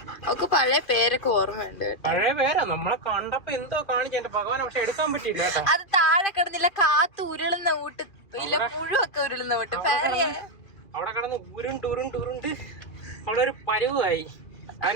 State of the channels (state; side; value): late; right; 2.4 ms